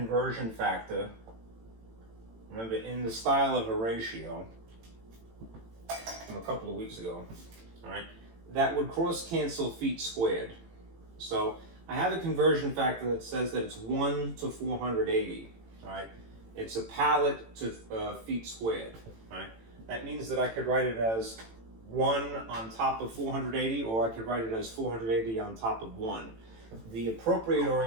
factor, remember, in the style of a ratio from a couple of weeks ago, all right, that would cross-cancel feet squared. So I have a conversion factor that says that it's 1 to 480, all right? It's a pallet to feet squared, all right? That means that I could write it as 1 on top of 480, or I could write it as 480 on top of 1. The appropriate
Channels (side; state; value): left; late; 18 ms